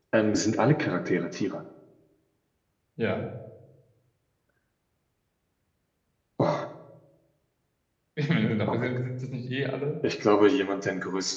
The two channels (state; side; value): identical; both; correlation 1.00